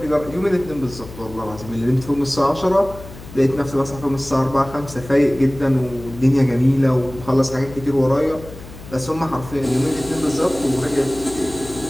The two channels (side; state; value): left; noise; hum, 15 dB below the sound